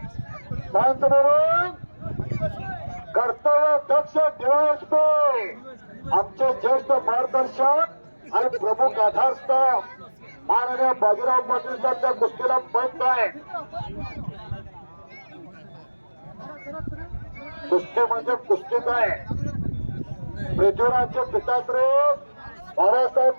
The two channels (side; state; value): both; inverted; correlation -1.00